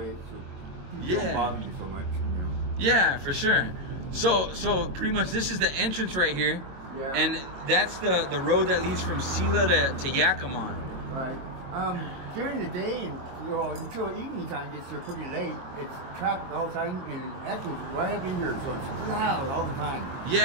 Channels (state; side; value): late; left; 22 ms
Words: so people yeah. don't bother you so much, you know. Yeah, for sure. So pretty much this is the entrance right here. Yeah. And that's the road that leads from Sela to Yakima. Right. During the day and until evening time gets there pretty late, it's traffic all the time, and actually it's right up in here, so it's loud all the time.